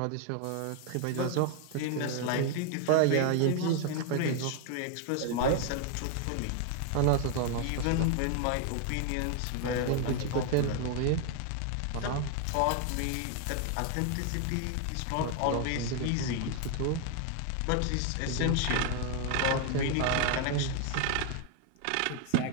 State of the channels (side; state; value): both; different; correlation 0.01